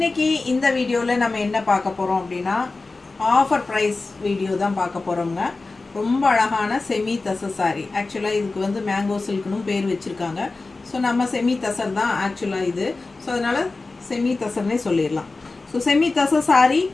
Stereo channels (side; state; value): right; quieter; 3.6 dB